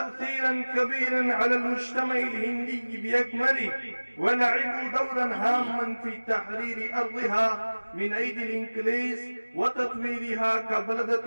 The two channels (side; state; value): both; inverted; correlation -1.00